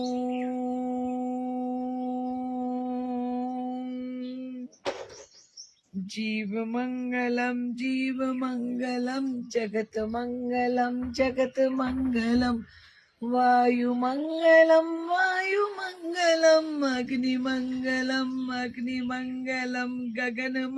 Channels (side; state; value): both; identical; correlation 1.00